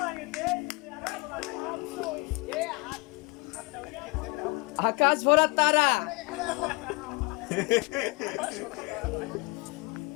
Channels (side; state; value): right; quieter; 27.4 dB